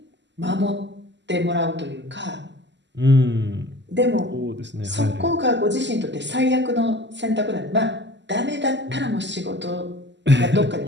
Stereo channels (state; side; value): late; left; 0.52 ms